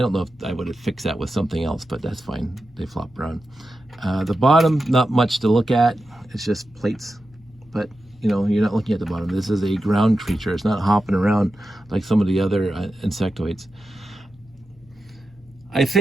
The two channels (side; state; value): both; normal; correlation 0.91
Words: know if I would have fixed that with something else, but that's fine. They flop around. The bottom, not much to look at. It's just plates. But, you're not looking at the bottom. This is a ground creature. It's not hopping around like some of the other Insectoids. I